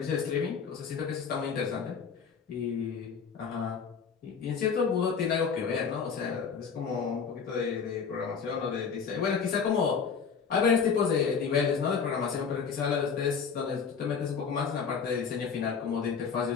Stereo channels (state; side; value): quieter; right; 6.1 dB